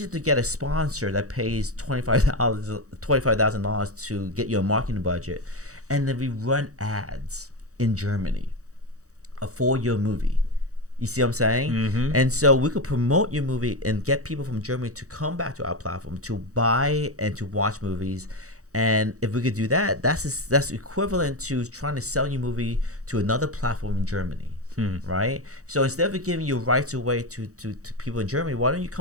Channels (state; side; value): late; left; 0.65 ms